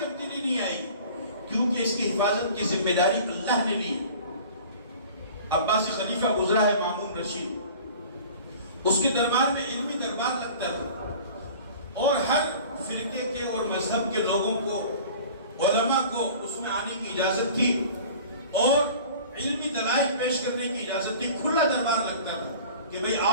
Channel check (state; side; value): inverted; both; correlation -0.44